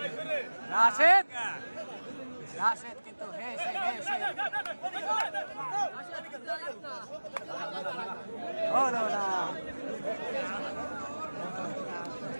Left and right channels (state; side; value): inverted; both; correlation -1.00